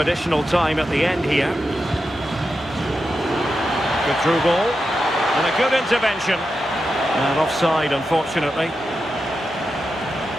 time at the end here. Good through ball. And a good intervention. And offside, unfortunately.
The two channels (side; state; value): both; normal; correlation 0.89